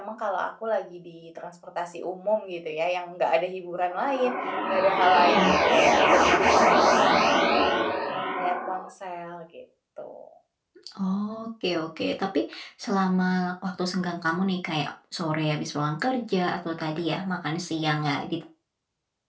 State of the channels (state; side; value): identical; both; correlation 1.00